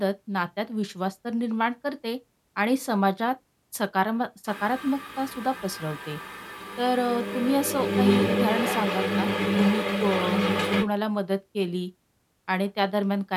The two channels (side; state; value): both; identical; correlation 1.00